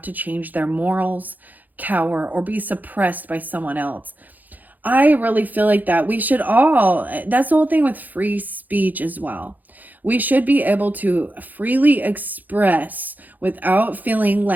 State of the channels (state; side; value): late; left; 0.083 ms